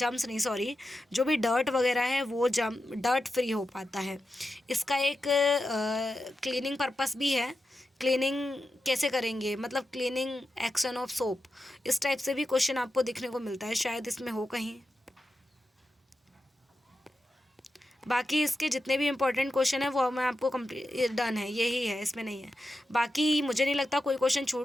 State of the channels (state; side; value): normal; both; correlation 0.90